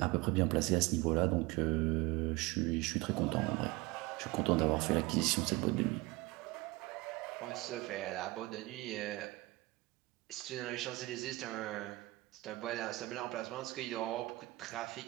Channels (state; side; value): quieter; left; 21.1 dB